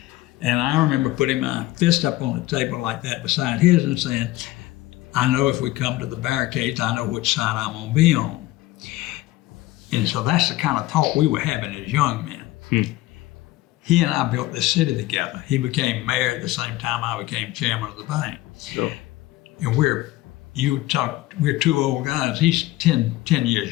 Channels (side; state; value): right; quieter; 17.2 dB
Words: I remember putting my fist up on the table like that beside his and saying, I know if we come to the barricades, I know which side I'm gonna be on. And so that's the kind of talk we were having as young men. He and I built this city together. He became mayor at the same time I became chairman of the bank. Sure. And we're two old guys. He's 10